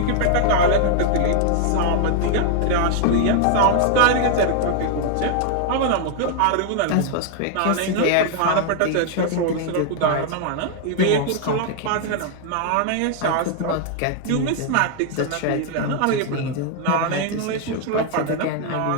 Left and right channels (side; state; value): both; different; correlation 0.00